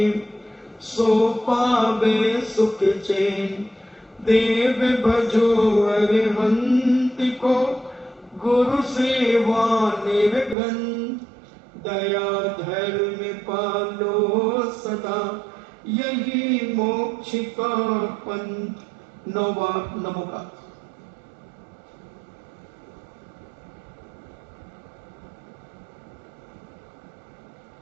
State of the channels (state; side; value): drops out; left; at 10.6 s